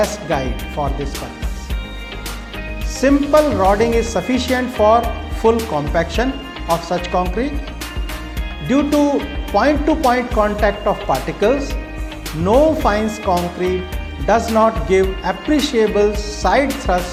guide for this purpose. Simple rodding is sufficient for full compaction of such concrete. Due to point-to-point contact of particles, no fines concrete does not give appreciable side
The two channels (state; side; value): identical; both; correlation 1.00